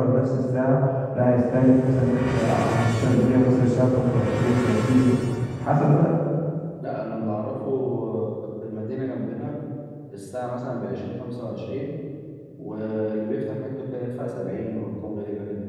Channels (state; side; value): identical; both; correlation 1.00